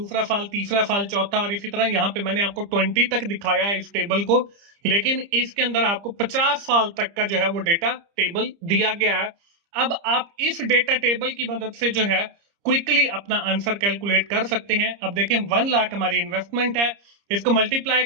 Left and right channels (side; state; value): left; late; 30 ms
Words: साल, तीसरा साल, चौथा, और इसी तरह यहाँ पे मैंने आपको 20 तक दिखाया है इस टेबल को, लेकिन इसके अंदर आपको 50 साल तक का जो है वो डेटा टेबल दिया गया है। अब आप इस डेटा टेबल की मदद से जो है क्विकली अपना आंसर कैलकुलेट कर सकते हैं। अब देखें 1 लाख हमारी इन्वेस्टमेंट है, इसको मल्टीप्लाई